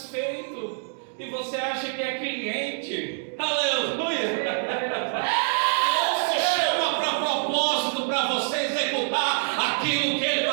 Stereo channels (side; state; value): left; silent; 61 dB below the other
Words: E você acha que é cliente. Aleluia! Deus te chama para propósito, para você executar aquilo que Ele